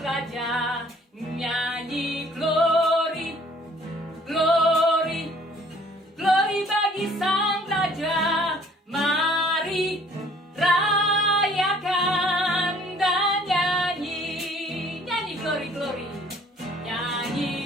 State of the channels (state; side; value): normal; both; correlation 0.57